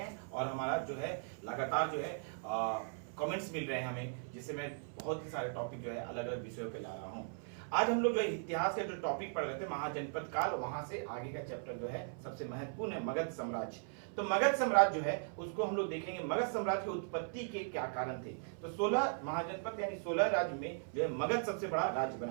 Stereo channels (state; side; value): silent; left; 52 dB below the other